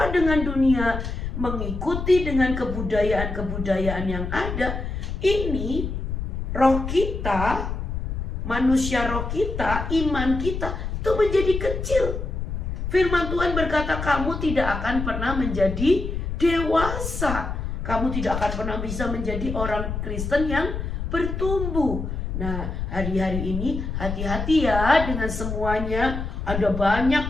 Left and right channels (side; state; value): left; noise; rumble, 4 dB below the sound